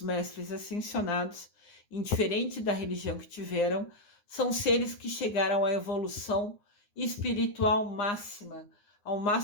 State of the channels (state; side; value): late; right; 9.7 ms